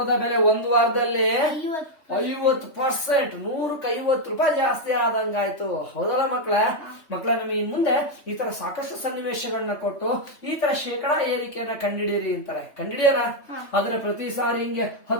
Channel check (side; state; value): right; late; 3.5 ms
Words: ಬೆಲೆ ಒಂದು ವಾರದಲ್ಲಿ 50%, 100ಕ್ಕೆ 50 ರೂಪಾಯಿ ಜಾಸ್ತಿ ಆದಂಗಾಯ್ತು. ಹೌದಲ್ಲ ಮಕ್ಕಳ? ನಮಗೆ ಇನ್ ಮುಂದೆ ಈ ತರ ಸಾಕಷ್ಟು ಸನ್ನಿವೇಶಗಳನ್ನ ಕೊಟ್ಟು ಈ ತರ ಶೇಕಡಾ ಏರಿಕೆಯನ್ನ ಕಂಡಿಡೀರಿ ಅಂತಾರೆ. ಕಂಡಿಡಿಯಲ್ಲ? ಆದ್ರೆ ಪ್ರತಿ ಸಾರಿ ಹಿಂಗೆ